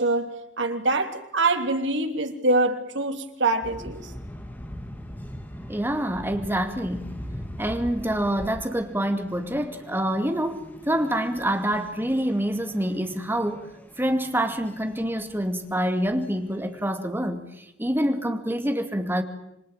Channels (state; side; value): normal; both; correlation 0.48